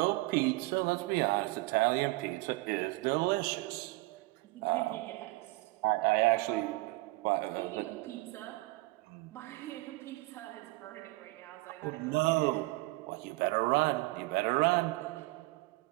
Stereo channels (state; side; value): quieter; left; 22.0 dB